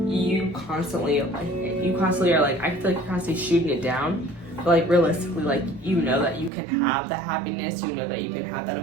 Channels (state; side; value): drops out; left; at 6.5 s